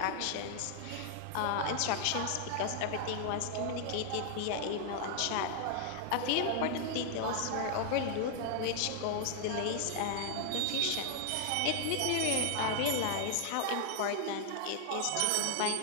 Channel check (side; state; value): both; different; correlation 0.00